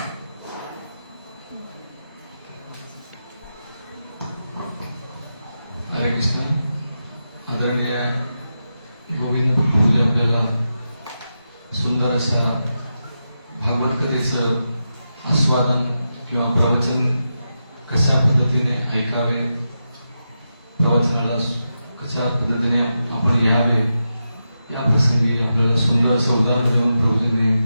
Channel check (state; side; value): inverted; both; correlation -0.88